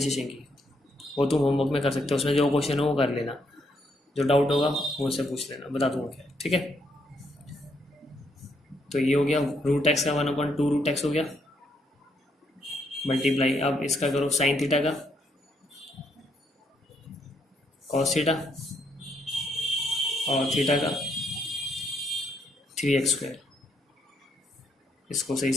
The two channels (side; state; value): both; normal; correlation 0.74